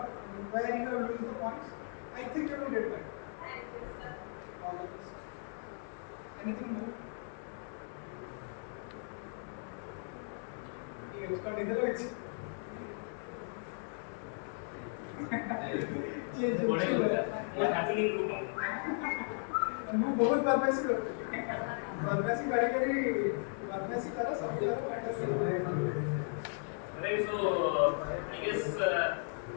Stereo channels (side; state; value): right; silent; 54 dB below the other